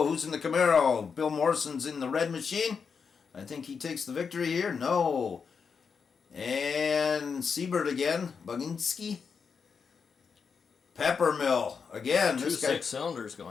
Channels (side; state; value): right; quieter; 5.9 dB